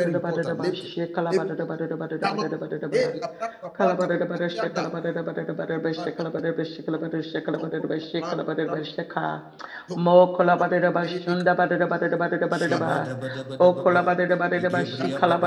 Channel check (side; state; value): both; identical; correlation 1.00